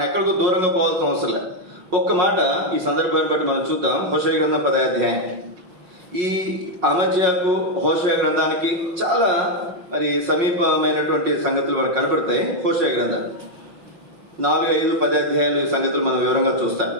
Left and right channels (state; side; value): late; left; 5.9 ms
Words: ఎక్కడికో దూరంగా పోవాల్సిన అవసరం లేదు. ఒక్క మాట ఈ సందర్భాన్ని బట్టి మనం చూద్దాం. హోషేయ గ్రంథం 10వ అధ్యాయం. ఈ అమజ్యాకు హోషేయ గ్రంథానికి చాలా మరి సమీపమైనటువంటి సంగతులు మనకు కనపడతాయి. హోషేయ గ్రంథం 4, 5, 10 అధ్యాయాలు ఈ సంగతులు మనం వివరంగా చూస్తాం.